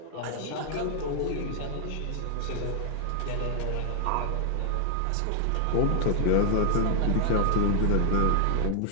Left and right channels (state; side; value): different; both; correlation 0.00